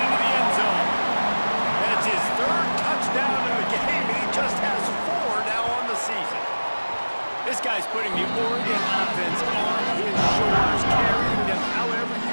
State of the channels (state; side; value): inverted; both; correlation -1.00